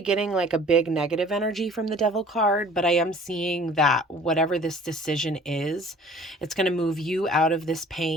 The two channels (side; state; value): both; normal; correlation 0.50